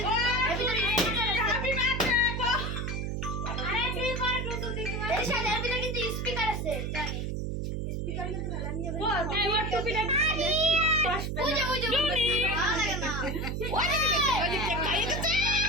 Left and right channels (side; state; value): right; noise; hum, 2 dB below the sound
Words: এর ভিতরে হ্যাপি বার্থডে আরে তুই কর টুটু দিদি এর সাথে এর ভিতরে কিন্তু স্পিকার আছে জানি স্পিকার কিন্তু খেলা নিয়ে যাবে ও তাই ওর টুপিটা বুঝে বুঝে ভালো লাগে না ওই যে কেক খাইয়ে দিতে